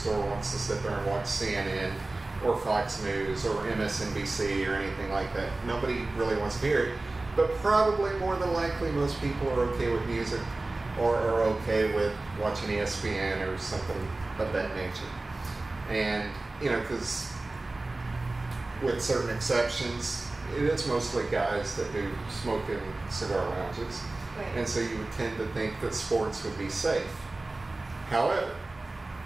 wants to sit there and watch CNN or Fox News or MSNBC or anything like that. Nobody really wants to hear it, but probably more than likely most people are okay with music or are okay with watching ESPN or something of that nature. And, because with certain exceptions, it is mostly guys that do smoke in cigar lounges. Right. And so you would tend to think that sports would be safe. However,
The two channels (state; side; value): quieter; left; 3.1 dB